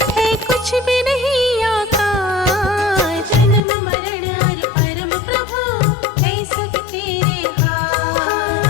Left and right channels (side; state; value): right; drops out; at 3.6 s